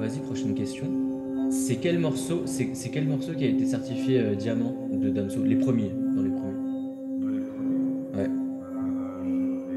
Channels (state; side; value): identical; both; correlation 1.00